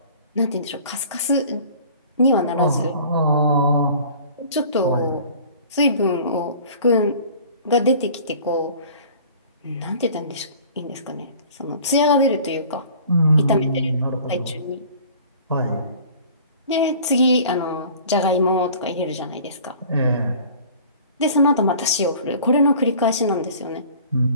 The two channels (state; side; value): inverted; both; correlation -0.47